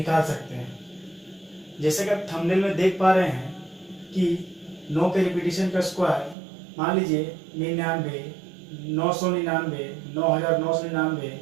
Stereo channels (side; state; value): left; drops out; at 6.4 s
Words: सकते हैं। जैसे कि आप थंबनेल में देख पा रहे हैं कि 9 के रिपीटेशन का स्क्वायर मान लीजिए 99, 999, 9999,